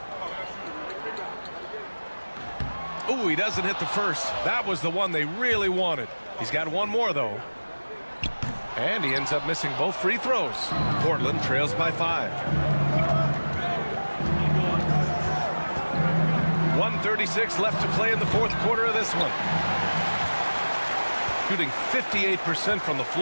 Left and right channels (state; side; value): inverted; both; correlation -1.00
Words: Ooh, he doesn't hit the first. That was the one they really wanted. He's got one more, though. And he ends up missing both free throws. Portland trails by 5. 1:36 left to play in the fourth quarter of this one. Shooting 58% from the